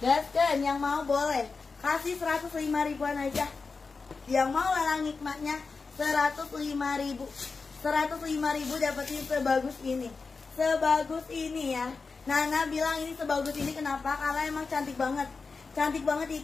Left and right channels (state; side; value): quieter; right; 4.5 dB